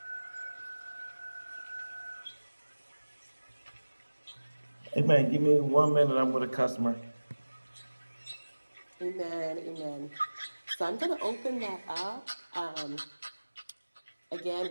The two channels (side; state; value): both; inverted; correlation -1.00